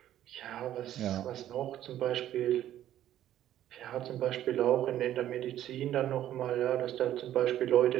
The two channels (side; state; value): left; quieter; 12.2 dB